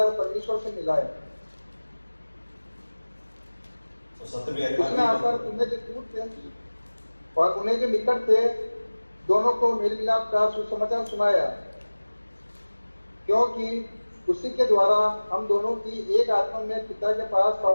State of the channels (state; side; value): inverted; both; correlation -1.00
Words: परमेश्वर से मिलाए। तो सत्य भी उसने आकर तुम्हें जो दूर थे और उन्हें जो निकट थे दोनों को मेल मिलाप का सुसमाचार सुनाया, क्योंकि उसी के द्वारा हम दोनों की एक आत्मा में पिता के पास